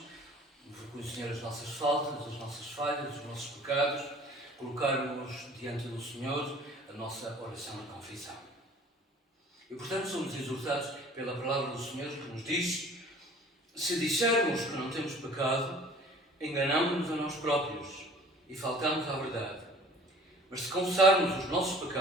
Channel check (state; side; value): normal; both; correlation 0.49